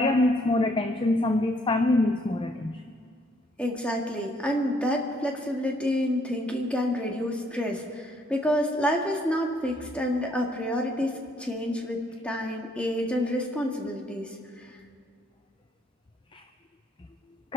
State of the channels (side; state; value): both; normal; correlation 0.67